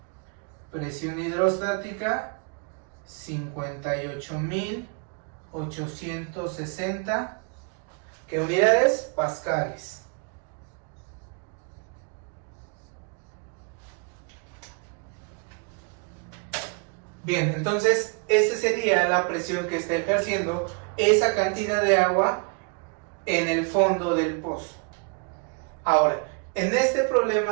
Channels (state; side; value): quieter; left; 35.6 dB